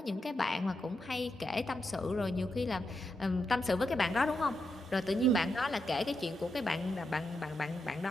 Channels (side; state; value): both; normal; correlation 0.85